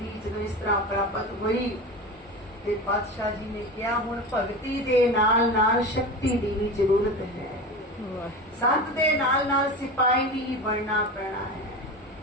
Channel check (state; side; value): normal; both; correlation 0.28